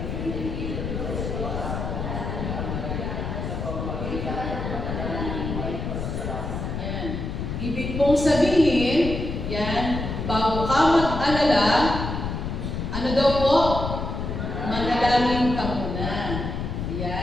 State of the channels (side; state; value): left; noise; rumble, 4 dB below the sound